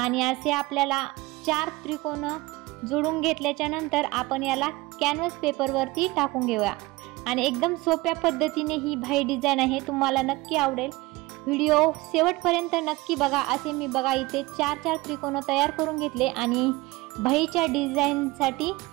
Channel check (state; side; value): quieter; left; 21.1 dB